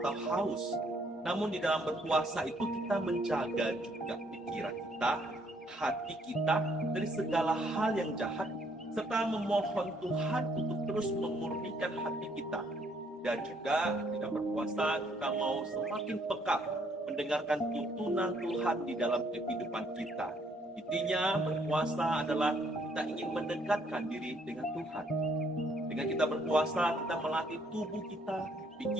haus, namun di dalam berpuasa itu kita menjaga juga pikiran kita, hati kita dari segala hal yang jahat, serta memohon Tuhan untuk terus memurnikan hati kita. Dan juga di dalam berpuasa kita mau semakin peka mendengarkan tuntunan Tuhan di dalam kehidupan kita. Intinya berpuasa adalah kita ingin mendekatkan diri dengan Tuhan. Dengan kita berpuasa, kita melatih tubuh kita,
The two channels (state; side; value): normal; both; correlation 0.67